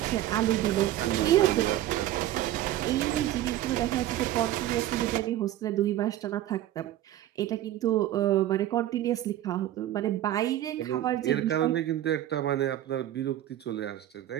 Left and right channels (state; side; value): quieter; left; 13.3 dB